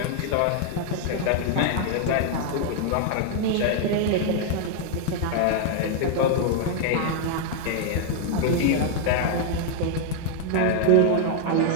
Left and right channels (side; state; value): both; different; correlation 0.00